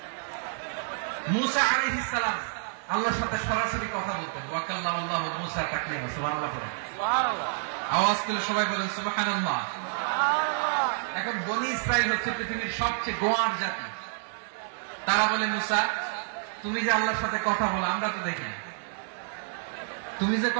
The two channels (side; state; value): left; silent; digital silence